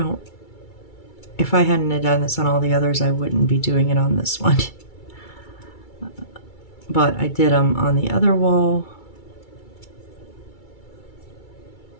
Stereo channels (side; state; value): right; late; 2.3 ms